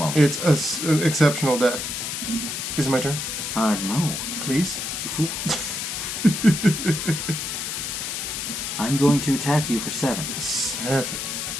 It's an exceptional deck. Is it my turn? No. Please? You fool. I'm going to attack you for 7 7.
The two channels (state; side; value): noise; left; hiss, 4 dB below the sound